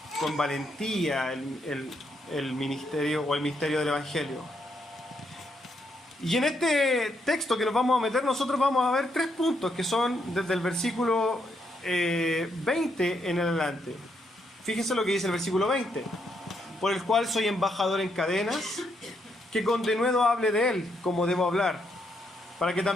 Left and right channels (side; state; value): both; normal; correlation 0.77